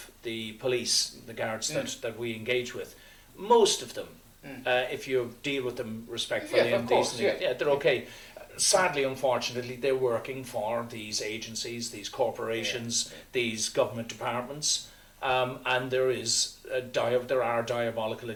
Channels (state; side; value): identical; both; correlation 1.00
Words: the police, the guards that we engage with, most of them, if you deal with them respectfully and decently, they're okay. Sadly, unfortunately, they're working for these agencies, these corporations, these government departments. And there are diabolical